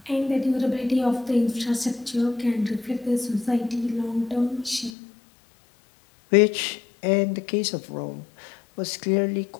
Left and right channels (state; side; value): drops out; right; at 4.9 s